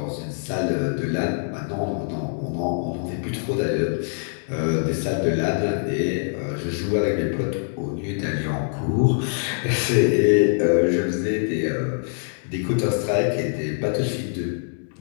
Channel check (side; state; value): right; silent; digital silence